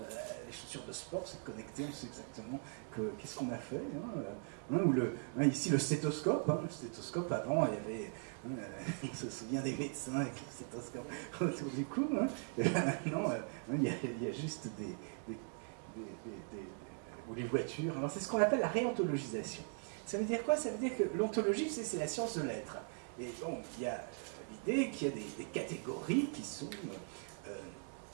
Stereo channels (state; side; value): silent; left; 51 dB below the other